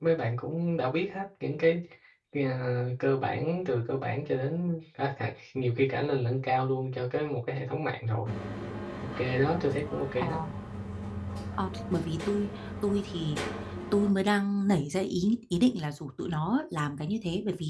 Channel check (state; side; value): identical; both; correlation 1.00